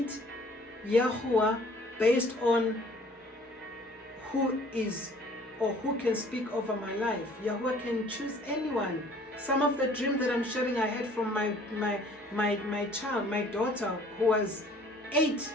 Yahuah based on who is or who can speak over my life. Yahuah can choose anyone. Some of the dreams that I'm sharing I had from my child, my daughter, who was 8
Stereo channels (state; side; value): normal; both; correlation 0.54